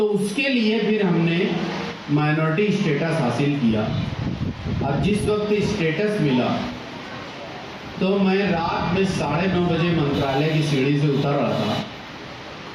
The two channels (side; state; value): both; identical; correlation 1.00